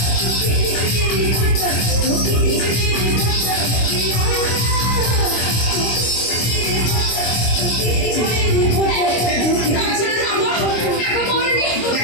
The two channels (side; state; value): right; late; 25 ms